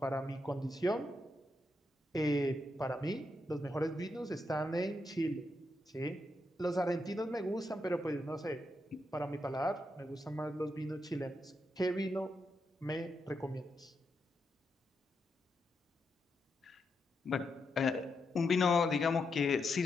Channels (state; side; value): normal; both; correlation 0.83